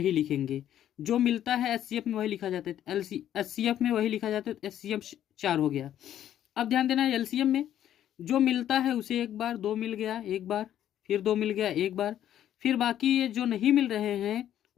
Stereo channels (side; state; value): right; quieter; 11.1 dB